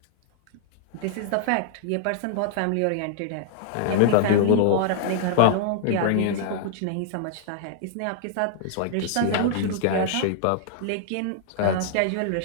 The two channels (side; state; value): both; different; correlation -0.01